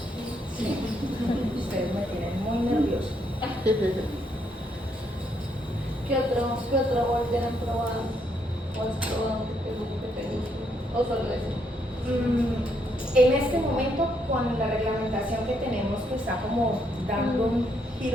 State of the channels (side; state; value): both; normal; correlation 0.74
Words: Ustedes me tienen muy nervioso. ¿Qué otro molde han probado? ¿O has probado que te guste? ¿O solo ese? En este momento, con la reglamentación que tenemos, que está como dando un